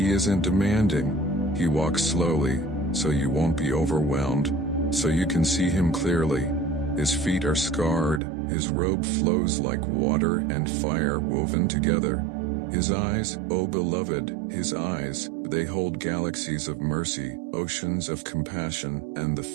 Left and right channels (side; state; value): left; drops out; at 8.2 s